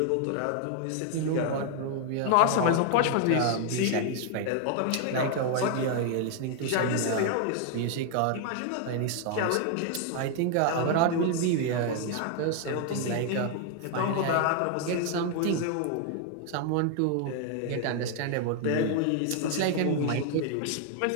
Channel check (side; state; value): both; different; correlation 0.00